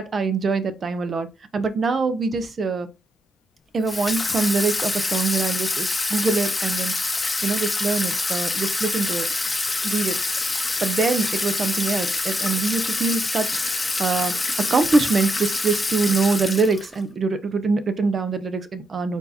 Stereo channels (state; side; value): normal; both; correlation 0.81